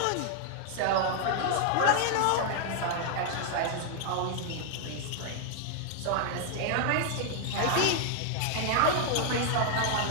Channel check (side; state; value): both; different; correlation 0.00